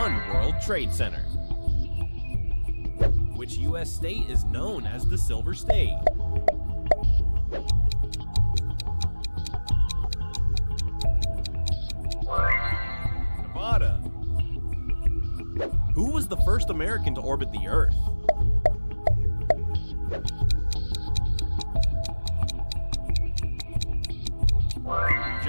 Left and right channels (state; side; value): inverted; both; correlation -1.00